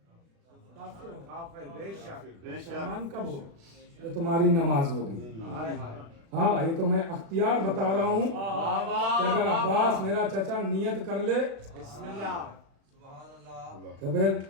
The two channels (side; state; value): left; late; 36 ms